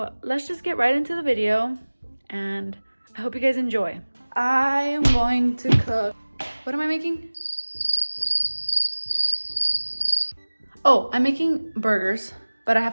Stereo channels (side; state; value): both; inverted; correlation -1.00